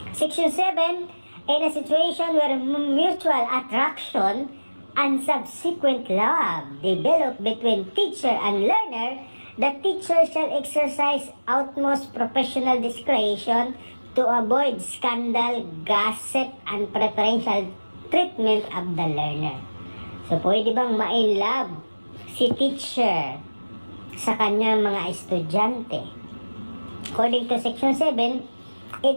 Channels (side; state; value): both; inverted; correlation -1.00